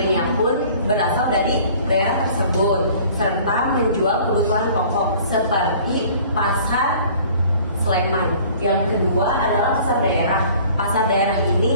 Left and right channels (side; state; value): both; inverted; correlation -0.50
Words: pun berasal dari daerah tersebut, serta menjual kebutuhan pokok seperti pasar Sleman. Yang kedua adalah pasar daerah. Pasar daerah